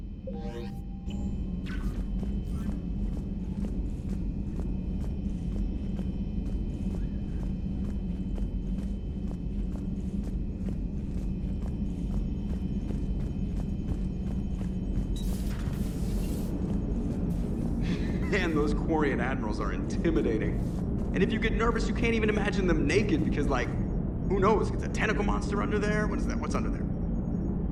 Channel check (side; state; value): both; identical; correlation 1.00